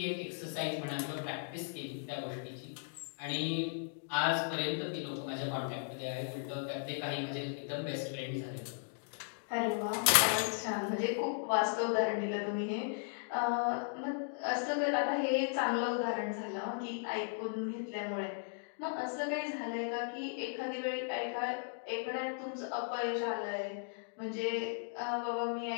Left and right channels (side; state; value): right; silent; digital silence